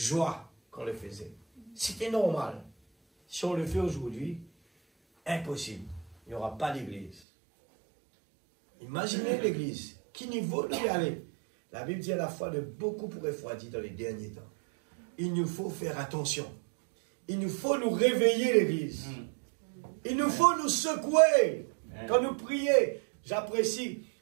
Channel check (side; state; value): left; drops out; at 7.2 s